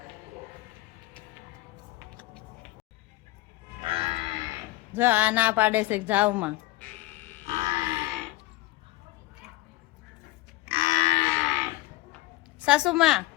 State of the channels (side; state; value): right; quieter; 19.2 dB